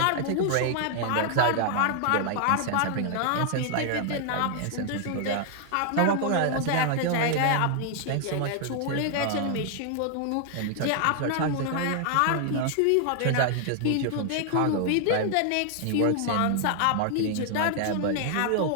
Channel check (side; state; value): both; different; correlation 0.00